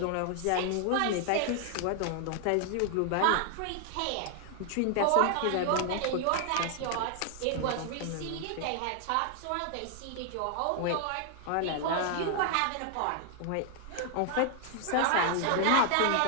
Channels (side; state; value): both; different; correlation 0.00